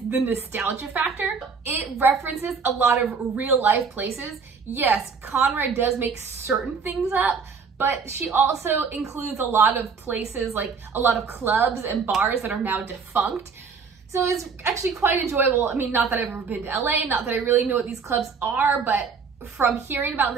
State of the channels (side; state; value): left; quieter; 5.5 dB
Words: the nostalgia factor. It references a lot of real life places. Yes, Conrad does make certain things up, but she also includes a lot of places, like a lot of clubs and bars that are now defunct. So it's actually quite enjoyable. I mean, not that I've ever been to LA, not that I really know what these clubs are, but from hearing about